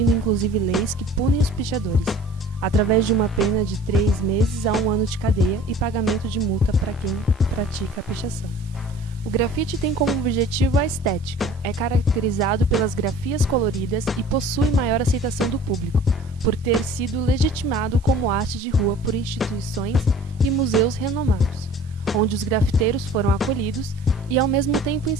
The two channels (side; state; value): both; normal; correlation 0.47